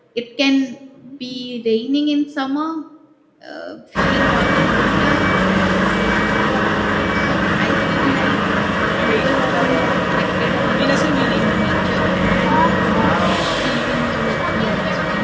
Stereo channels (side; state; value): both; identical; correlation 1.00